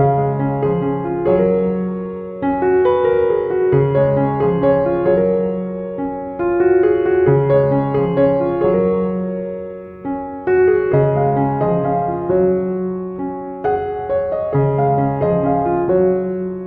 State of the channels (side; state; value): both; identical; correlation 1.00